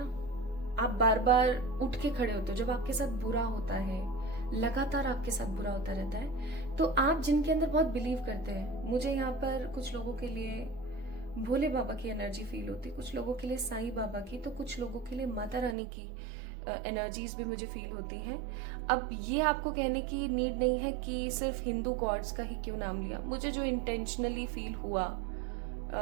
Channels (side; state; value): left; drops out; at 15.8 s